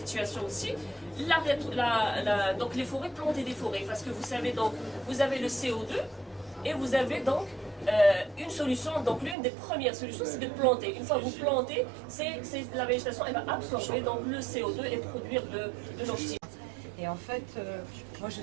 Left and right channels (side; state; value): left; drops out; at 9.3 s